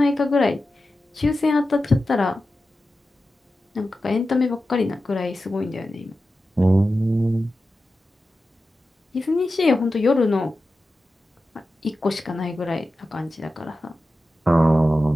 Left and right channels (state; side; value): normal; both; correlation 0.93